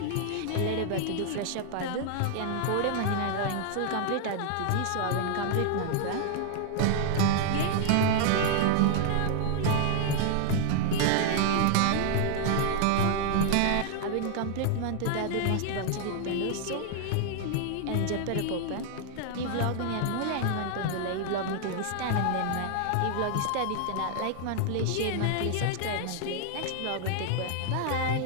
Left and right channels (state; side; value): different; both; correlation 0.00